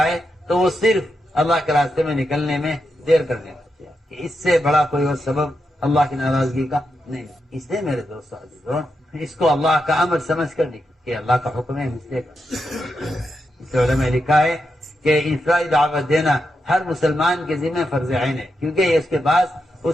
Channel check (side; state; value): both; normal; correlation 0.86